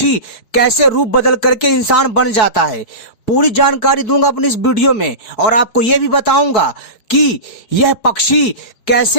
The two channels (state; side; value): late; right; 4.6 ms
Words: कैसे रूप बदल करके इंसान बन जाता है। पूरी जानकारी दूंगा अपनी इस वीडियो में और आपको यह भी बताऊंगा कि यह पक्षी